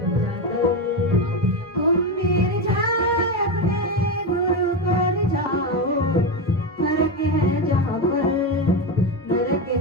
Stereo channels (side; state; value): both; normal; correlation 0.14